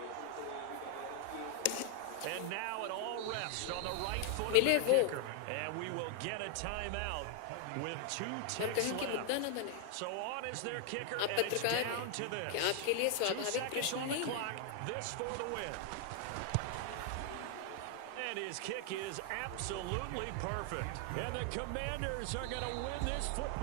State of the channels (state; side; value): different; both; correlation 0.00